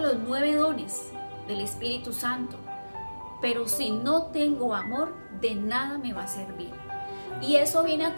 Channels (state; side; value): inverted; both; correlation -1.00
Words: los 9 dones del Espíritu Santo, pero si no tengo amor, de nada me va a servir. Y eso viene